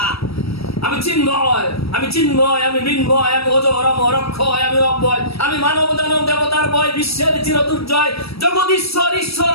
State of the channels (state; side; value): late; right; 0.77 ms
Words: আমি চিন্ময়, আমি চিন্ময়, আমি মৃন্ময়, আমি অজর অমর অক্ষয়, আমি অব্যয়, আমি মানব দানব দেবতার বয়, বিশ্বের চির দুর্জয়, জগদীশ্বর ঈশ্বর,